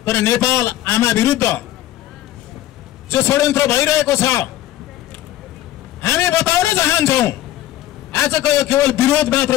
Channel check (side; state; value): right; quieter; 13.8 dB